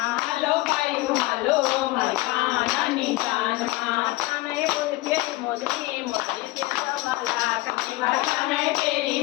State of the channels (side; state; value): right; quieter; 19.2 dB